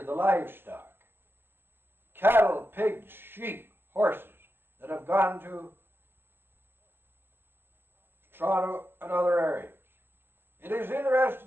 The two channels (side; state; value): left; late; 0.10 ms